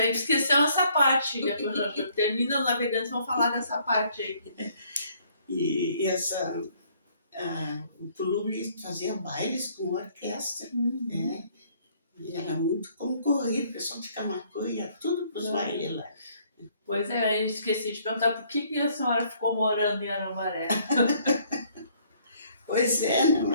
esqueceu essa parte. Termina o Navegantes, vão falar dessa parte aí. E o clube fazia bailes com orquestra, né? E era muito concorrido, o pessoal de Camacuã ia tudo para os bailes lá. Pois é, eu esqueci de perguntar por que a senhora ficou morando em Arambaré. Pois é, não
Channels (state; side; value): inverted; both; correlation -0.63